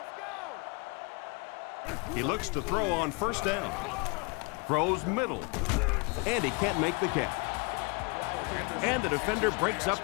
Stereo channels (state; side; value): quieter; right; 29.4 dB